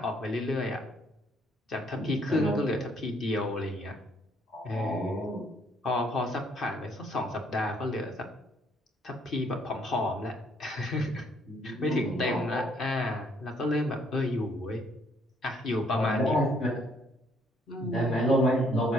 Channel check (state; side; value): normal; both; correlation 0.66